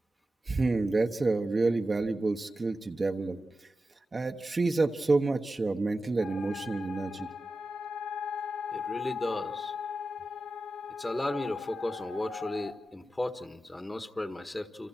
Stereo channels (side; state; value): both; normal; correlation 0.92